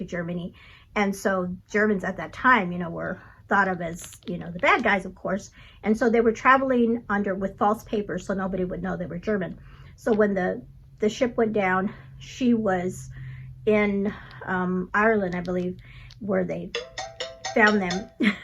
Germany. And so Germans at that time, you know, were thought of as, you know, the bad guys, of course. And so they were traveling with false papers so nobody would know they were German. So when the ship went down, she was in Ireland, I believe, where they found them.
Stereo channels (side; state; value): both; identical; correlation 1.00